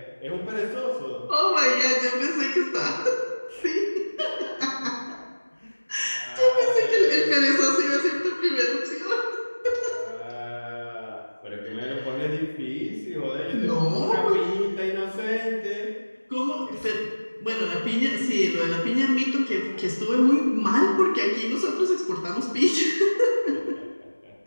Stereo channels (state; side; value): inverted; both; correlation -1.00